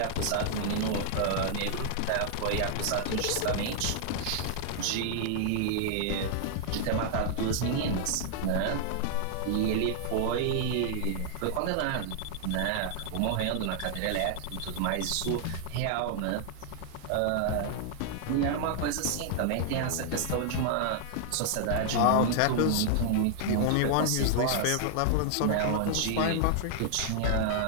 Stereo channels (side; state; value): both; different; correlation -0.01